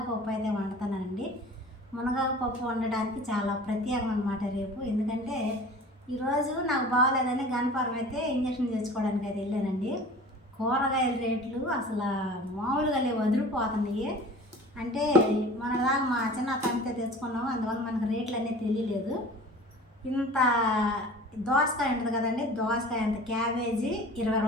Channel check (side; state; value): both; normal; correlation 0.42